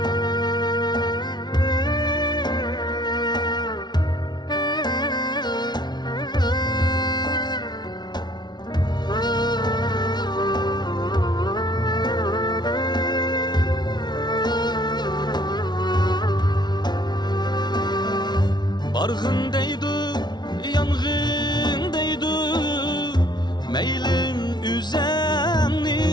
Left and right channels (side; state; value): right; late; 0.20 ms